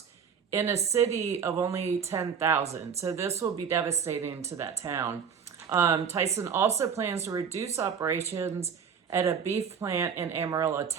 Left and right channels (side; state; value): left; quieter; 6.9 dB